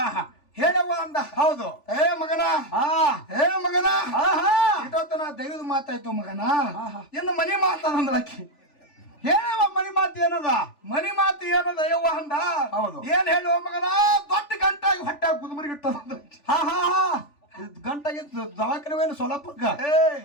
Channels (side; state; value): right; late; 3.4 ms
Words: ಹೇಳವ್ವ ಅಂದ. ಹೌದು ಮಗನ ಇಟ್ಟೊತ್ತನ ದೈವದ ಮಾತಾಯ್ತು ಮಗನ. ಇನ್ನು ಮನಿ ಮಾತಾಡಂದ್ರಕಿ. ಹೇಳವ ಮನಿ ಮಾತು ಏನದ? ಮನಿ ಮಾತು ಏನದ ಯವ್ವ ಅಂದ. ಹೌದು ಏನ್ ಹೇಳುವ ಮಗನ? ದೊಡ್ಡ ಗಂಟಾಗಿ ಹೊಟ್ಟೆ ಕುದುಮರಿಗಿಟ್ಟದ. ಗಂಟಾಗಿ ದವಾಖಾನೆ ಸೊಲಾಪುರ್ಕ